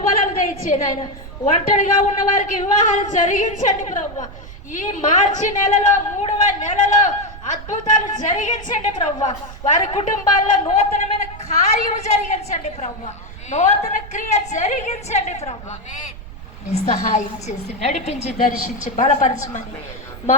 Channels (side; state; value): right; noise; rumble, 15 dB below the sound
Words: దయచేయండి ఆయన. ఒంటరిగా ఉన్న వారికి వివాహాలు జరిగించండి ప్రభువా. ఈ మార్చి నెలలో 3వ నెలలో అద్భుతాలు జరిగించండి ప్రభువా. వారి కుటుంబాల్లో నూతనమైన కార్యము జరిగించండి ప్రభువా. నూతన క్రియ జరిగించండి ప్రభువా. సహాయం చేసి నడిపించి, దర్శించి, బలపరచమని